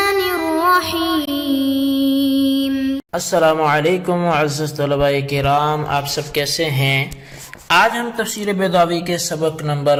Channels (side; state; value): both; identical; correlation 1.00